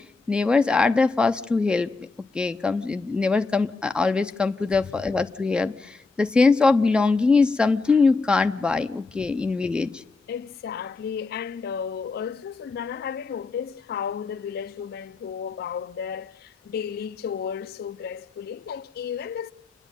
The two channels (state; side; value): quieter; right; 4.0 dB